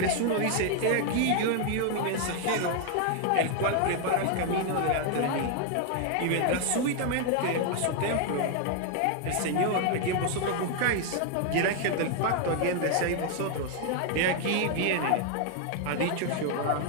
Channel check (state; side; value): different; both; correlation 0.00